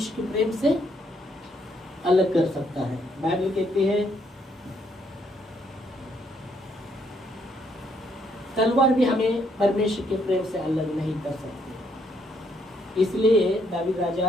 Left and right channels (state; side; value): normal; both; correlation 0.71